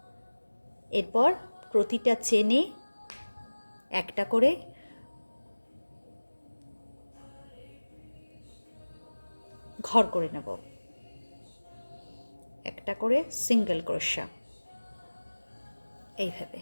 এরপর প্রতিটা চেনে একটা করে ঘর করে নেব, একটা করে সিঙ্গেল ক্রোশা এইভাবে।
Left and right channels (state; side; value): inverted; both; correlation -1.00